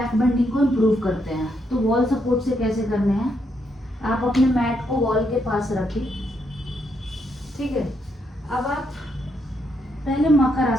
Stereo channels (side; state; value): both; normal; correlation 0.77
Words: बेंडिंग को इम्प्रूव करते हैं। तो वॉल सपोर्ट से कैसे करने हैं, आप अपने मैट को वॉल के पास रखिए, ठीक है। अब आप पहले मकर